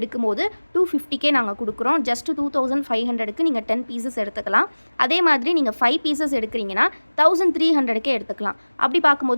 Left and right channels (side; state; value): both; inverted; correlation -1.00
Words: 250K நாங்கள் கொடுக்குறோம். ஜஸ்ட் 2500க்கு நீங்கள் 10 பீசஸ் எடுத்துக்கலாம். அதே மாதிரி நீங்கள் 5 பீசஸ் எடுக்கிறீங்கன்னா 1300K எடுத்துக்கலாம். அப்படி